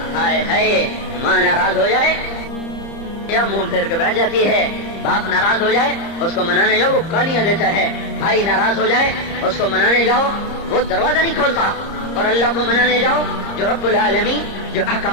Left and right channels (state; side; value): late; right; 30 ms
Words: ہائے ماں ناراض ہو جائے یا منہ پھیر کے بیٹھ جاتی ہے، باپ ناراض ہو جائے اس کو منانے جاؤ وہ گالیاں دیتا ہے، بھائی ناراض ہو جائے اس کو منانے جاؤ وہ دروازہ نہیں کھولتا، اور اللہ کو منانے جاؤ جو رب العالمین، جو